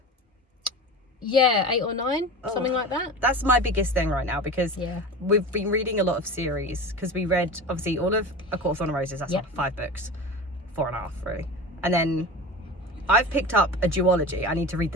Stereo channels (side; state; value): both; normal; correlation 0.31